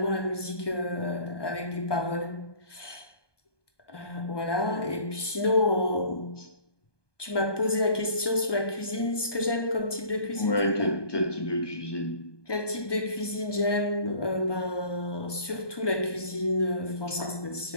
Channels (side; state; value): right; late; 1.2 ms